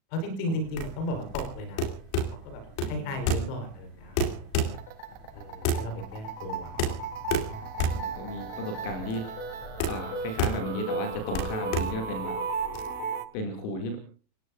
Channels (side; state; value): right; late; 37 ms